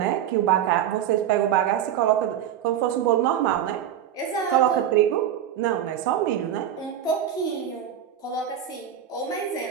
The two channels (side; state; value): left; quieter; 10.1 dB